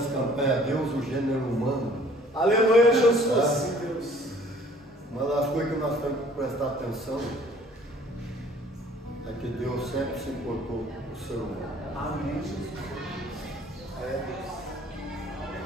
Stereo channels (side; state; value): both; normal; correlation 0.54